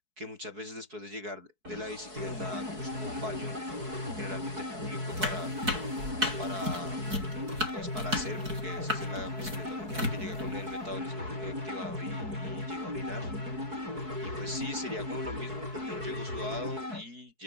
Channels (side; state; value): left; late; 4.6 ms